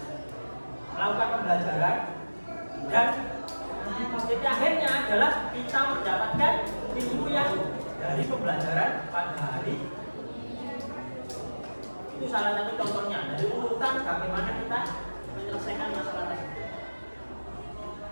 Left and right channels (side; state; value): both; inverted; correlation -1.00